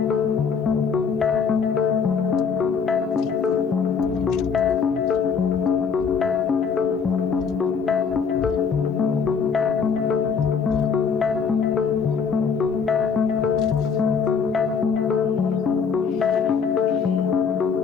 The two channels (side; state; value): right; quieter; 6.0 dB